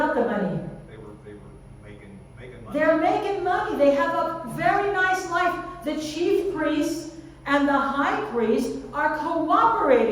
the money? They were making money. They're making money. They have a very nice life. The chief priests and the high priest are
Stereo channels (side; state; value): both; identical; correlation 1.00